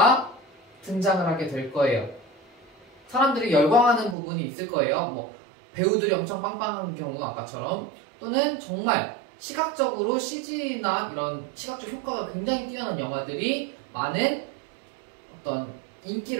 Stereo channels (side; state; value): left; drops out; at 4.2 s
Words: 등장을 하게 될 거예요. 사람들이 열광하는 부분이 있을 거예요. 뭐 배우들이 엄청 빵빵한 경우 아까처럼 또는 정말 시각적으로 CG나 이런 시각적 효과가 굉장히 뛰어난 영화들이 많은 어떤